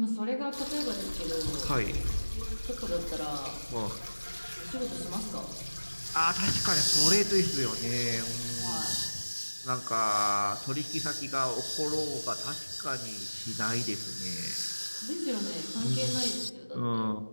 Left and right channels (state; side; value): inverted; both; correlation -1.00